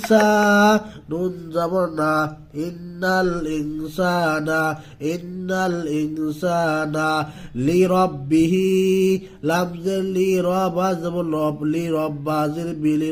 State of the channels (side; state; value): both; identical; correlation 1.00